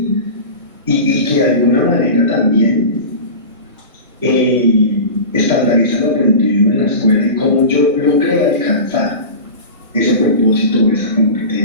Y que de alguna manera también estandarizan el aprendido en la escuela y cómo yo logré alcanzar ese propósito o esa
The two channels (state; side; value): inverted; both; correlation -0.31